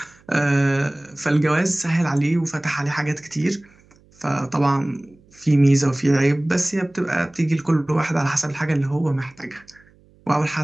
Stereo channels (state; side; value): noise; right; hum, 30 dB below the sound